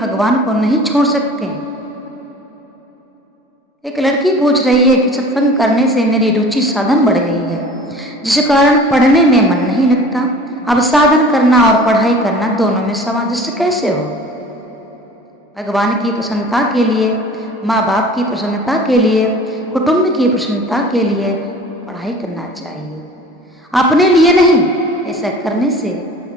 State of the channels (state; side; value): normal; both; correlation 0.43